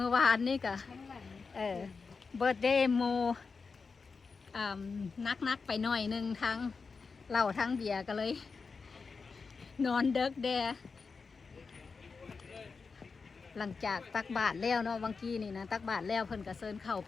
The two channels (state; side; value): quieter; right; 4.8 dB